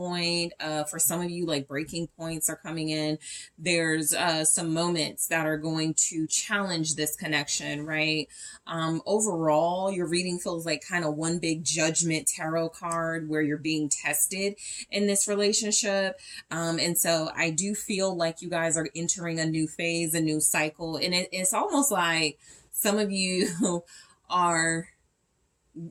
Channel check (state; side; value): identical; both; correlation 1.00